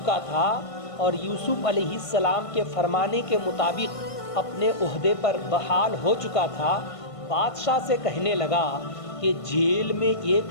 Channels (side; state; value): right; late; 1.5 ms